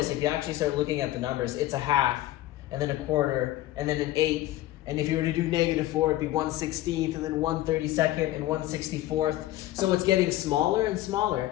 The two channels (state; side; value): quieter; right; 15.4 dB